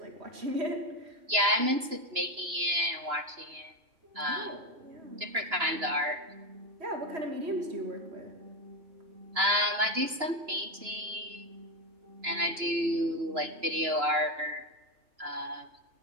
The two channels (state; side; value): late; left; 2.9 ms